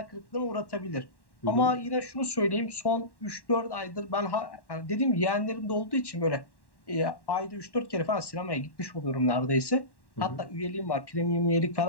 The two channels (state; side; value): late; right; 1.1 ms